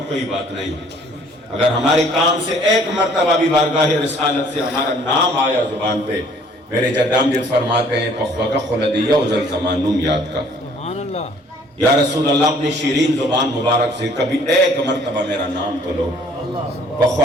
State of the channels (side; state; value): both; normal; correlation 0.58